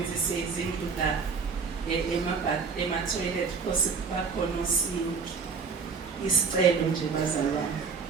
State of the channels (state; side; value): quieter; left; 5.2 dB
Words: izindlu la ema-toilet because bakhona osinki. Isicelo nje bazalwane.